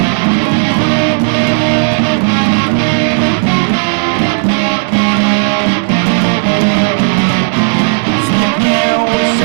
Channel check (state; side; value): silent; left; 62 dB below the other